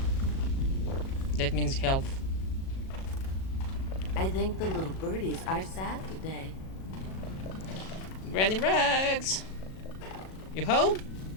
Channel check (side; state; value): right; late; 37 ms